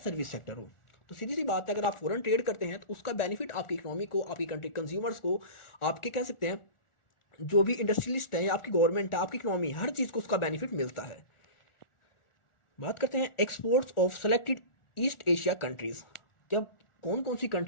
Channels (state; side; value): late; right; 1.4 ms